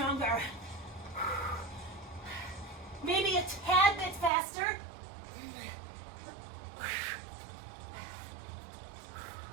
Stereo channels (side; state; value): left; drops out; at 4.3 s